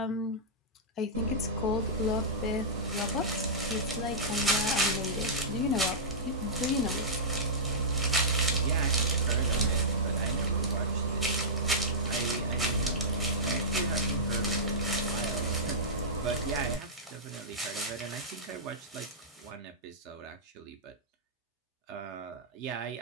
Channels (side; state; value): both; normal; correlation -0.14